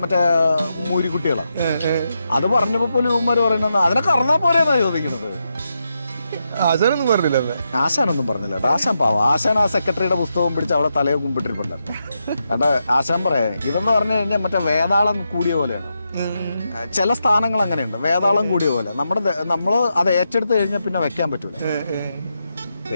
മറ്റേ മൂരിക്കുട്ടികളാണ്. അത് പറഞ്ഞപ്പോ പോലും ഇവന്മാര് പറയുന്നത് അതിനെ കറന്നാ പോലെന്നാ ചോദിക്കുന്നത്. ആശാനൊന്നും പറഞ്ഞില്ല. ആശാനൊന്നും പറഞ്ഞില്ല. ആശാൻ പാവം. ആശാൻ ആ സെക്രട്ടറിയുടെ പുസ്തകം പിടിച്ച് അവളെ തലയെ കുമ്പിട്ടിരിപ്പുണ്ടായിരുന്നു. എന്നിട്ട് ആശാൻ പറയാ ഇതെന്ന് പറഞ്ഞു കഴിഞ്ഞാൽ മറ്റേ വേതാളം കൂടിയ പോലെയാണ്. ചില സ്ഥാനങ്ങൾ അങ്ങനെയുണ്ട്, വേതാളം കൂടിയ പോലെ. നമ്മള് അത് ഏറ്റെടുത്ത് കഴിഞ്ഞാൽ പിന്നെ വെക്കാൻ പറ്റൂല.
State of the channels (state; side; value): inverted; both; correlation -0.85